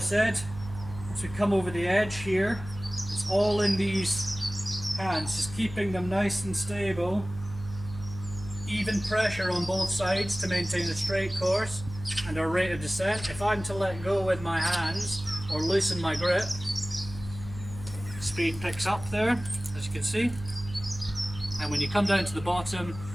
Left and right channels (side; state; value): right; noise; hum, 12 dB below the sound